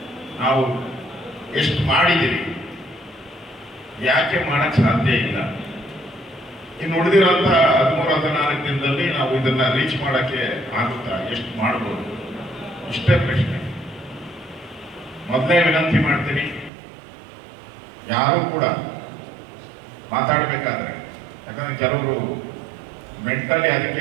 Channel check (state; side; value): drops out; left; at 16.7 s